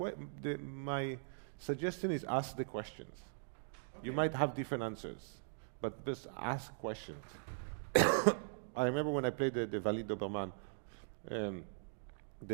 suggestion is ask the questions. Okay. You might have different answers, but just ask questions. I remember when I played the Valide Doberman,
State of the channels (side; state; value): left; silent; digital silence